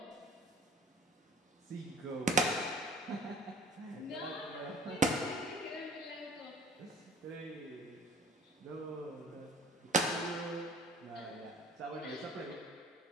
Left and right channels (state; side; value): normal; both; correlation 0.48